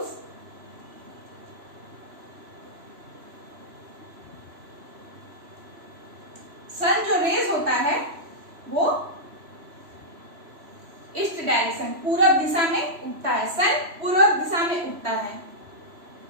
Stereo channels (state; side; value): late; left; 3.0 ms